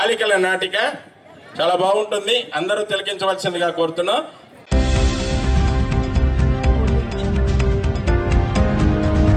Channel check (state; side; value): identical; both; correlation 1.00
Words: నాటిక చాలా బాగుంటుంది, అందరూ తిలకించవలసిందిగా కోరుతున్నాం.